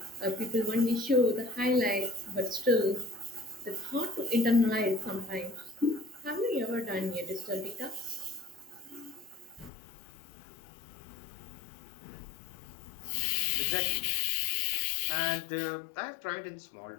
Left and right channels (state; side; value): drops out; right; at 9.7 s